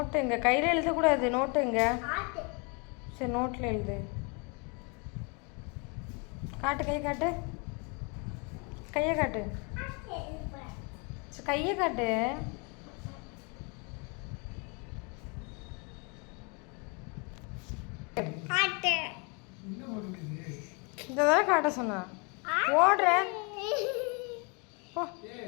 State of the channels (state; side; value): quieter; right; 33.1 dB